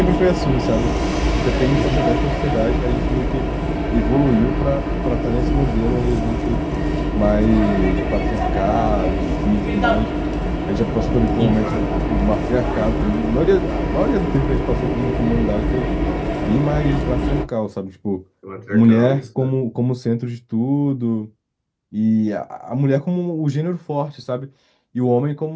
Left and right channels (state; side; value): identical; both; correlation 1.00